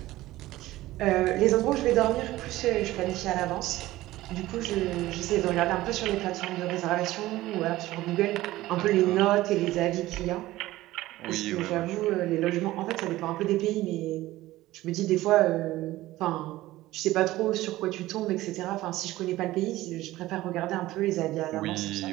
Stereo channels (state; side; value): quieter; left; 16.8 dB